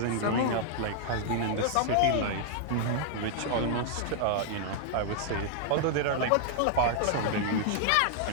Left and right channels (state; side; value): different; both; correlation -0.01